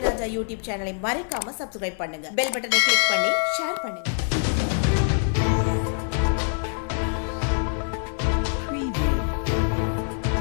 யூடியூப் சேனலை மறக்காம சப்ஸ்கிரைப் பண்ணுங்க. பெல் பட்டனை கிளிக் பண்ணி ஷேர் பண்ணுங்க.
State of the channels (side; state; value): right; silent; 62 dB below the other